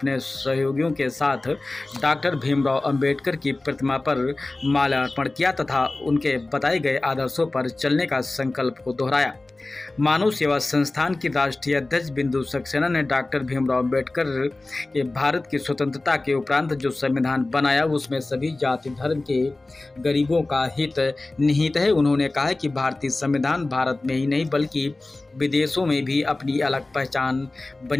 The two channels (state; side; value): quieter; right; 3.0 dB